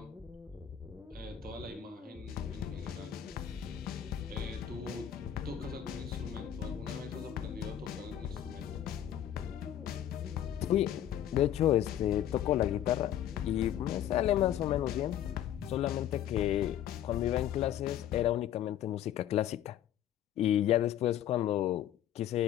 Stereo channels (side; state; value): right; quieter; 10.9 dB